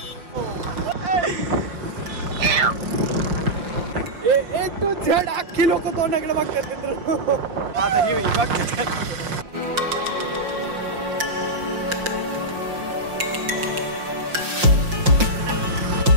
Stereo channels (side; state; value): left; late; 5.7 ms